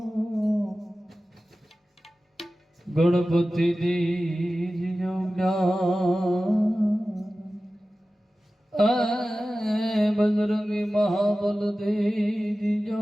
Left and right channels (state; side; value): normal; both; correlation 0.95